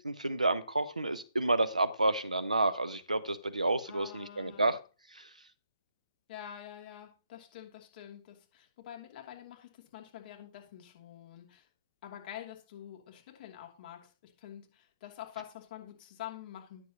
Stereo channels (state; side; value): inverted; both; correlation -0.79